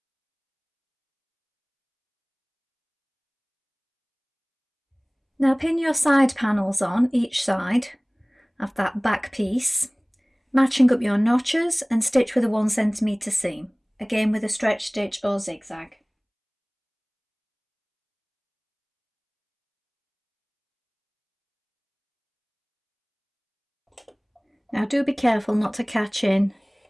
Now pin your side panels on each side of that back piece Matching up your notches and stitch with a 1 cm seam, again with a stretch stitch or zigzag. Now do be careful not to catch in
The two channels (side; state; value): both; identical; correlation 1.00